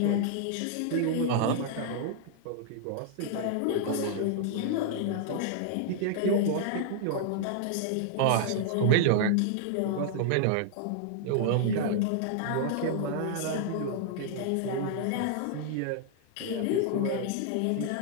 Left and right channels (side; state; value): both; different; correlation -0.01